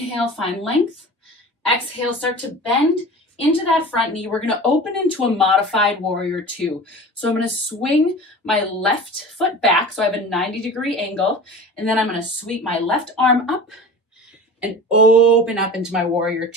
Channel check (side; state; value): both; normal; correlation 0.36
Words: find length. Exhale, start to bend. into that front knee, we're gonna open into a modified warrior two. So I'm gonna swing my left foot back, so I have a 90-degree angle, and then I'm gonna sweep my left arm up and open up into my warrior